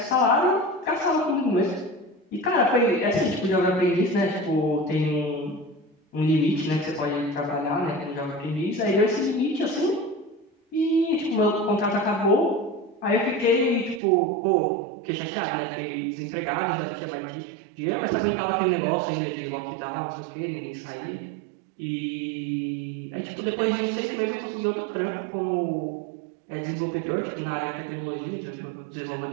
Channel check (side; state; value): left; drops out; at 14.0 s